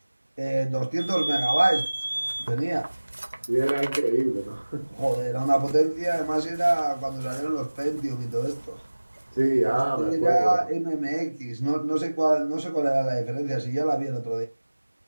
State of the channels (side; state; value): both; inverted; correlation -1.00